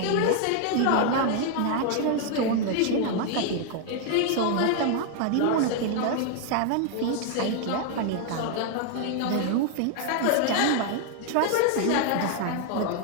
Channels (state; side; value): different; both; correlation 0.00